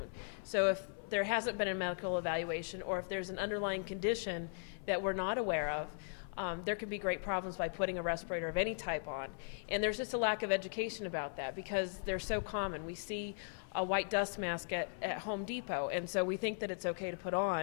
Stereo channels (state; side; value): silent; right; 52 dB below the other